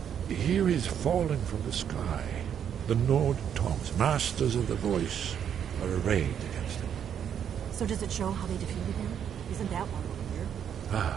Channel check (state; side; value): quieter; left; 8.7 dB